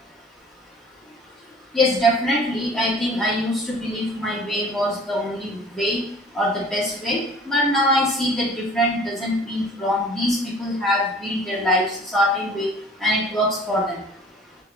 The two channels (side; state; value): both; normal; correlation 0.49